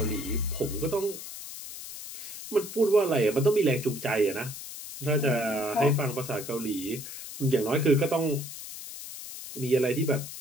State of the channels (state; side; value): noise; left; hiss, 11 dB below the sound